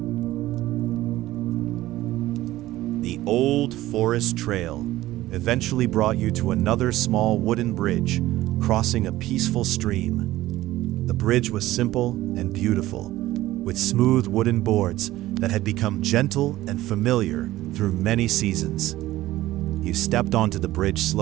The old forest trail eventually brought you to another small wooden bridge crossing a peaceful stream. The bridge was simple and beautiful, with smooth wooden boards that had become gentle and familiar through many seasons. You stepped onto the bridge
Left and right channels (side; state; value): left; quieter; 16.0 dB